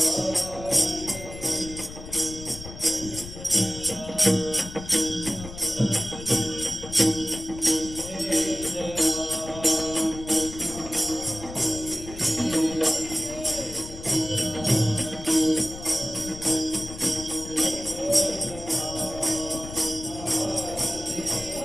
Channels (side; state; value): left; noise; rumble, 12 dB below the sound